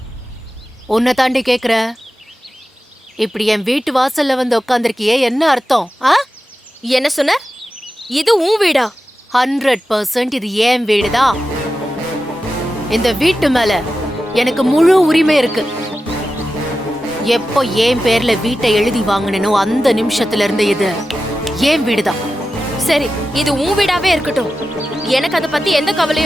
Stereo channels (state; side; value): normal; both; correlation 0.93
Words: உன்னை தாண்டி கேக்குற. இப்படி என் வீட்டு வாசல்ல வந்து உட்காந்துருக்கியே, என்ன அர்த்தம்? என்ன சொன்ன? இது உன் வீடா? 100% இது என் வீடுதான். இந்த வீட்டு மேல எனக்கு முழு உரிமை இருக்கு. எப்போ என் பேர்ல வீட்டை எழுதி வாங்கினோ அந்த நிமிஷத்துல இருந்து இது என் வீடுதான். சரி, இது உன் வீடாவே இருக்கட்டும். எனக்கு அதை பத்தி எந்த